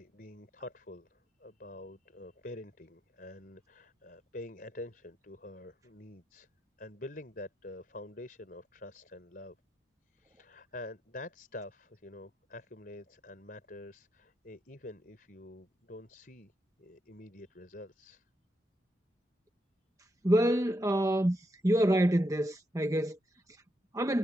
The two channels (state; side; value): normal; both; correlation 0.83